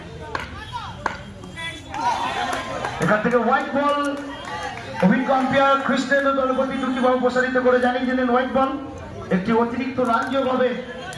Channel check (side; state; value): both; identical; correlation 1.00